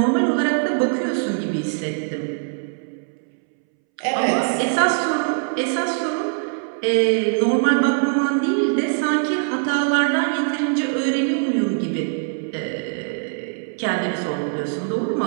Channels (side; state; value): left; silent; 64 dB below the other